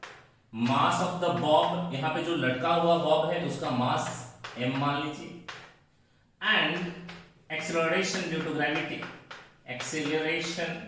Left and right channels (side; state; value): both; identical; correlation 1.00